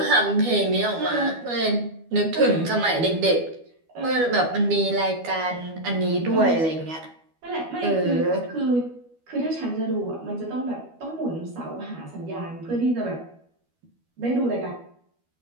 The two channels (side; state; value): left; late; 12 ms